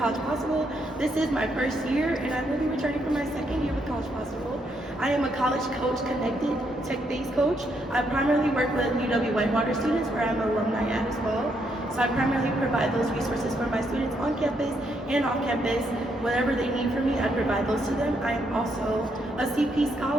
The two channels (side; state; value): both; normal; correlation 0.76